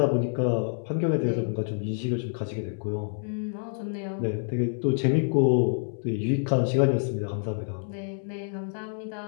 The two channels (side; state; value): right; silent; 60 dB below the other